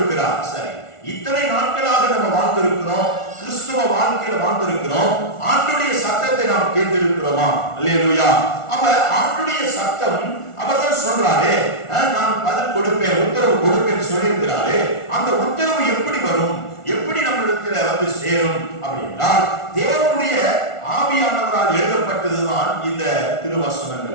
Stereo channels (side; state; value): right; late; 1.4 ms